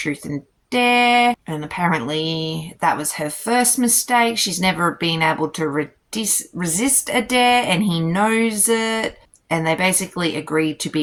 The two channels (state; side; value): identical; both; correlation 1.00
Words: and dare, and apparently that was her first mistake. She's never been able to resist a dare, and he knows it, and they basically agreed to